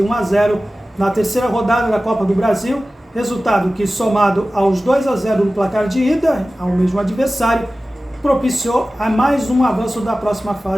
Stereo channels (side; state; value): both; normal; correlation 0.96